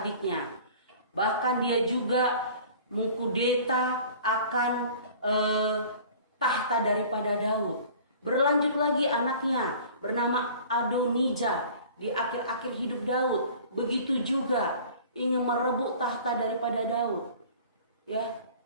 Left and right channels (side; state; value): both; inverted; correlation -0.46